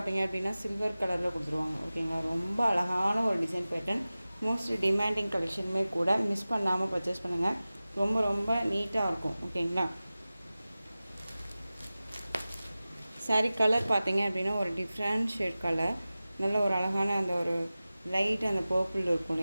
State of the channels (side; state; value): both; inverted; correlation -0.97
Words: அப்படின்னா சில்வர் கலரில் கொடுத்துருவாங்க. ஓகேங்களா, ரொம்ப அழகான ஒரு டிசைன் பேட்டர்ன். மோஸ்ட் டிமாண்டிங் கலெக்ஷனுமே கூட, மிஸ் பண்ணாமல் பர்ச்சேஸ் பண்ணுங்கள். ரொம்ப ரொம்ப நீட்டாக இருக்கும். ஓகேங்களா, சாரி கலர் பார்த்தீங்க அப்படின்னா ஒரு டிஃப்ரெண்ட் ஷேட் கலர், நல்ல ஒரு அழகான அந்த ஒரு லைட் அந்த பர்பிள் இருக்கும்